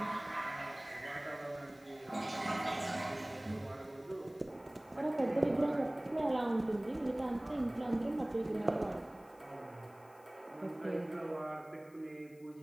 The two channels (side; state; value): left; noise; hiss, 28 dB below the sound